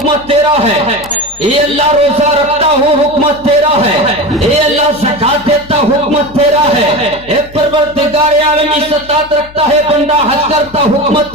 تیرا ہے، اے اللہ روزہ رکھتا ہوں حکمت تیرا ہے، اے اللہ زکات دیتا حکمت تیرا ہے، اے پروردگار عالم استطاعت رکھتا ہے بندہ حج کرتا حکمت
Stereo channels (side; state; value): left; noise; hum, 21 dB below the sound